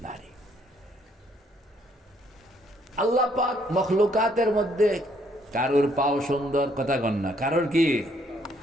নারী। আল্লাহ পাক মখলুকাতের মধ্যে কারোর পাও সুন্দর, কথা কন না, কারোর কি,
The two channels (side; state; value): both; normal; correlation 0.68